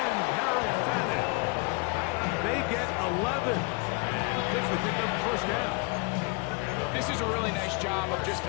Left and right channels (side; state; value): right; quieter; 31.1 dB